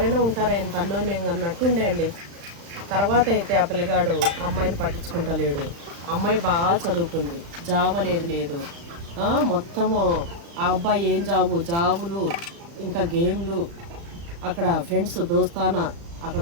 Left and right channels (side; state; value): left; late; 35 ms